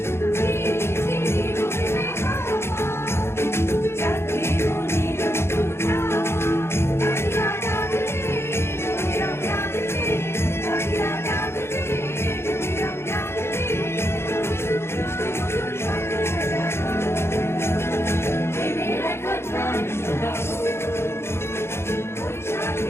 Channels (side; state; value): right; late; 0.12 ms